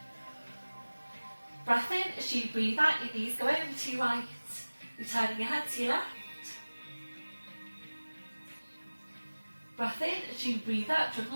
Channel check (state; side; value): inverted; both; correlation -1.00